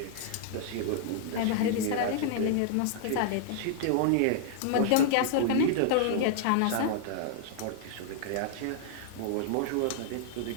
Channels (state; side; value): different; both; correlation -0.01